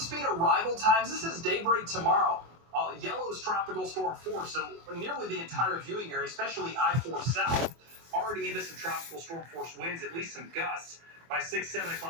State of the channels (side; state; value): left; late; 24 ms